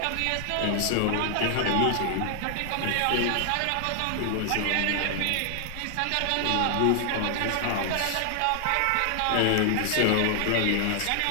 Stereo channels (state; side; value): different; both; correlation 0.00